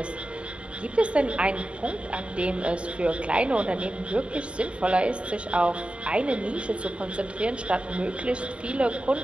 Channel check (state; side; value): late; left; 0.058 ms